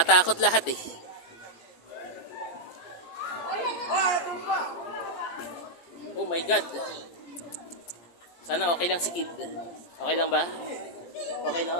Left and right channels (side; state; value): right; late; 17 ms